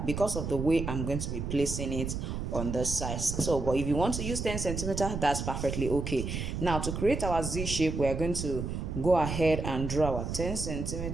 because of the way I'm going to be placing it on the size. So but if you want to use 10 centimeter, that's perfectly okay. Now to create our Z shape, we are going to go ahead and draw our 10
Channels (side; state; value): right; noise; rumble, 4 dB below the sound